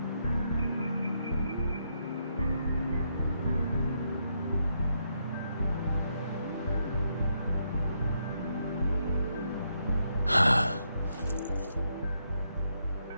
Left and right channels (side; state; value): both; inverted; correlation -0.77